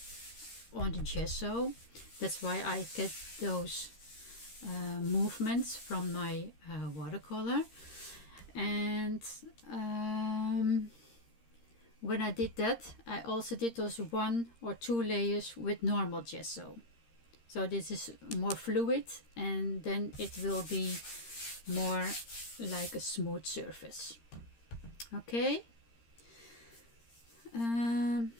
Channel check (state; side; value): late; right; 13 ms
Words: on the gesso. That's why I get those movements from my watercolor. And when I did that, I also did those 1 or 2 layers with normal gesso. So this is more fluid, and then it will be more like a smooth surface. Okay.